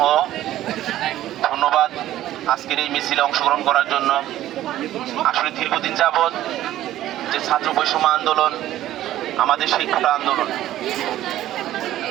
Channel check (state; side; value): quieter; left; 13.6 dB